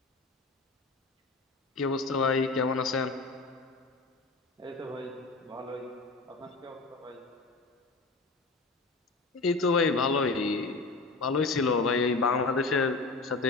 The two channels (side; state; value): right; quieter; 3.7 dB